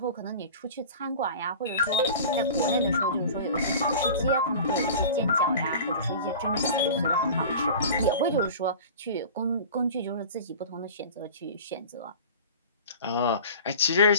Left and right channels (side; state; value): both; inverted; correlation -0.38